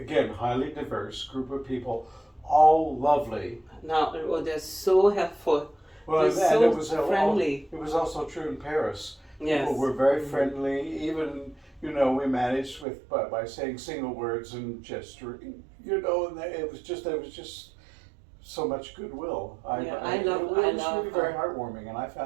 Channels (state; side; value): drops out; left; at 12.9 s